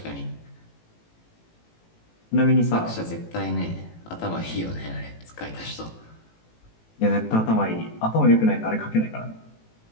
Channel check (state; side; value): late; right; 18 ms